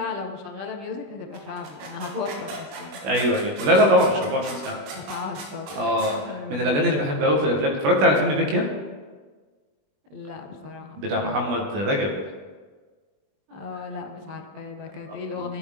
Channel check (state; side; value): late; left; 21 ms